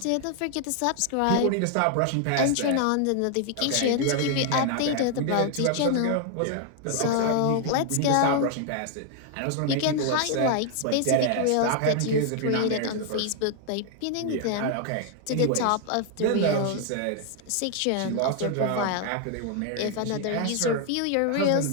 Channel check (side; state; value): both; different; correlation 0.00